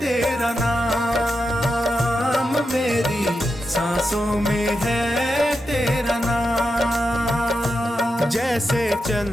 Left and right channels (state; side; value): normal; both; correlation 0.88